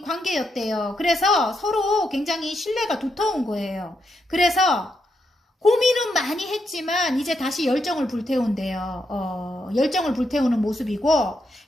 관계였대요. 그래서 서로 굉장히 신뢰가 두터운 거예요. 그래서 고민은 많이 했지만 이제 다시 열정을 불태운대요. 열정을 불태우는 모습이고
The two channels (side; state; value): both; normal; correlation 0.82